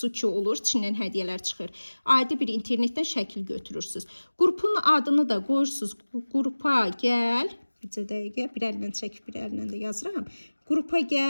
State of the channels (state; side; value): inverted; both; correlation -1.00